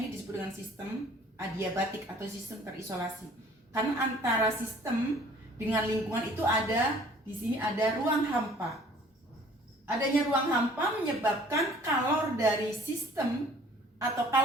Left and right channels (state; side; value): normal; both; correlation 0.53